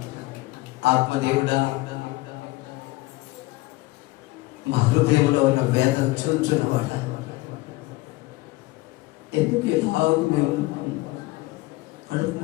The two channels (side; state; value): right; quieter; 20.7 dB